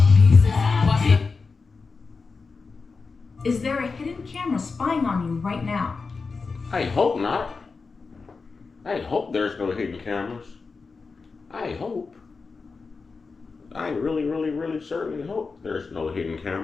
Is there a hidden camera spying on you right now? I hope not. I hope there's no hidden cameras. I hope. I really, really, really certainly hope there's no hidden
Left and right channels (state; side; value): quieter; right; 4.5 dB